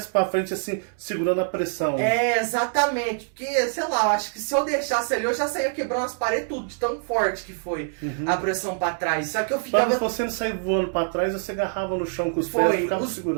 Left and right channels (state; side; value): silent; left; 62 dB below the other